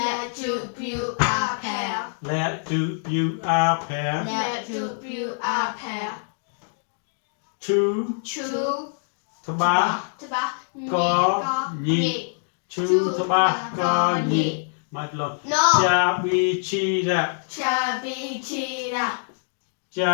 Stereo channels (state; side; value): silent; right; digital silence